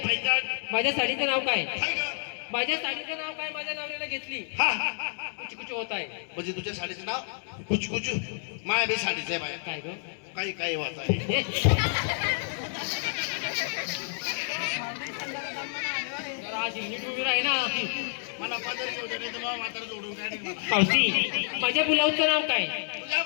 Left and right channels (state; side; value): silent; right; digital silence